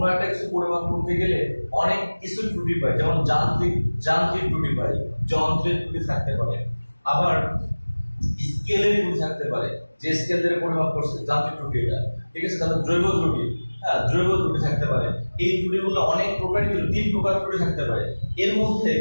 একটা কিছু পরিমাপ করতে গেলে অনেক কিছু ত্রুটি পাই, যেমন যান্ত্রিক ত্রুটি পাই, যন্ত্রের ত্রুটি থাকতে পারে, আবার স্কেলের ত্রুটি থাকতে পারে, যে স্কেল দিয়ে পরিমাপ করছে যান্ত্রিক ত্রুটি এটা। ঠিক আছে, তাহলে জৈব ত্রুটি, হ্যাঁ, জৈব ত্রুটি থাকতে পারে। এই ত্রুটিগুলো অনেক প্রকারই, 3 প্রকার ত্রুটি থাকতে পারে। এর মধ্যে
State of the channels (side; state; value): both; inverted; correlation -1.00